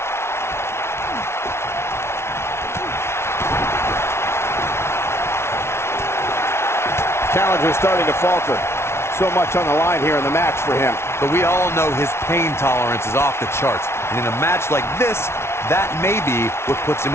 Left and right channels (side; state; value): right; late; 0.12 ms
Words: Challenger starting to falter. So much on the line here in the match for him. But we all know his pain tolerance is off the charts. And in a match like this, that may be what puts him